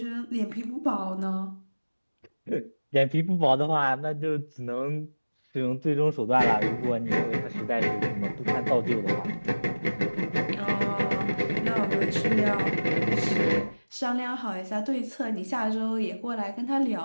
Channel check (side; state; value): both; inverted; correlation -1.00